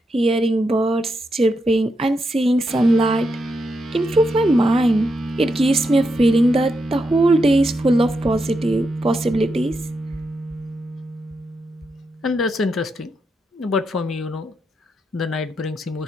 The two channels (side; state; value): both; normal; correlation 0.84